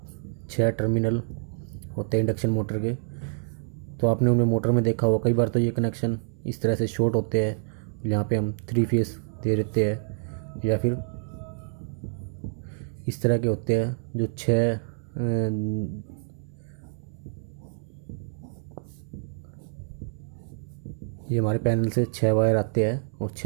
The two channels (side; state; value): left; silent; 59 dB below the other